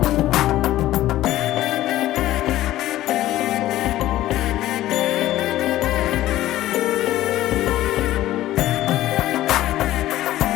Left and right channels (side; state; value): right; quieter; 14.8 dB